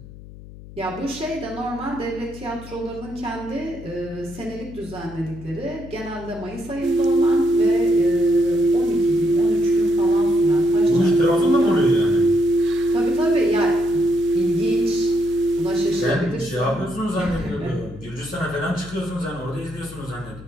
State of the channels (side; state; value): left; noise; hum, 17 dB below the sound